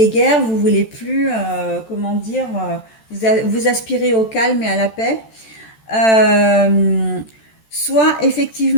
vous voulez plus, comment dire, vous aspirez au calme et à la paix. Euh, Soit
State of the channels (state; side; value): late; right; 13 ms